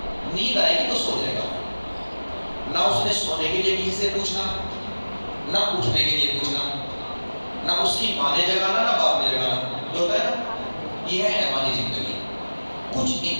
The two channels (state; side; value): inverted; both; correlation -1.00